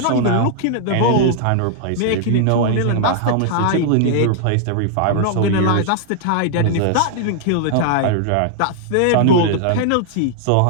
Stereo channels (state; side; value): different; both; correlation -0.01